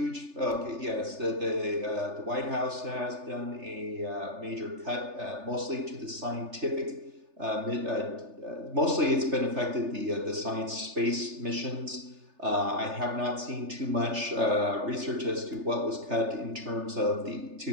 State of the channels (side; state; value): left; late; 3.3 ms